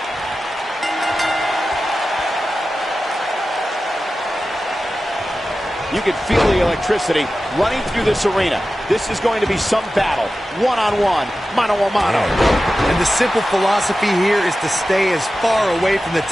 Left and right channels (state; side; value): normal; both; correlation 0.94